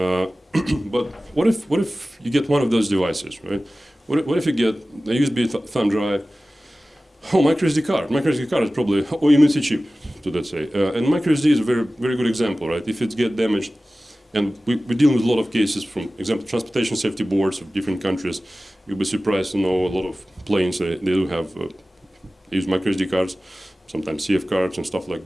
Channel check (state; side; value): normal; both; correlation 0.96